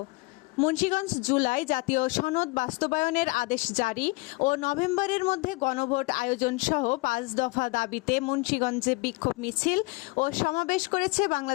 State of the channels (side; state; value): right; quieter; 25.6 dB